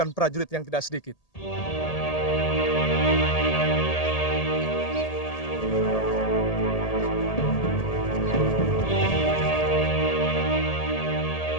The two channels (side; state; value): right; late; 1.8 ms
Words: prajurit yang tidak sedikit.